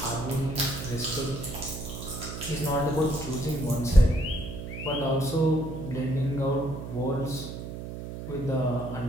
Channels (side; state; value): right; noise; hum, 8 dB below the sound